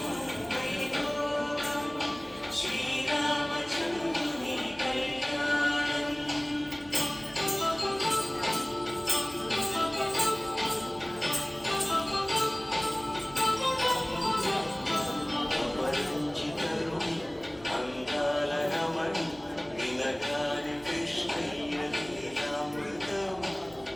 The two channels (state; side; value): noise; right; hum, 24 dB below the sound